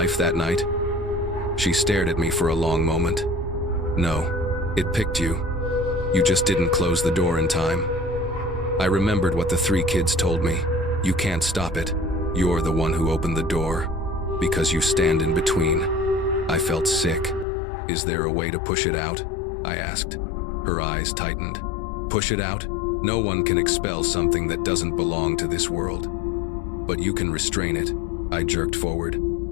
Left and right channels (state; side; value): drops out; right; at 17.4 s